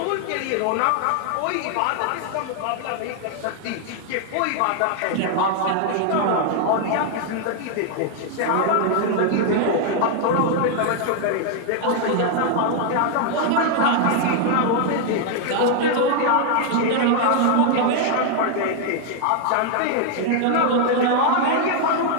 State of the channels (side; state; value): both; different; correlation 0.00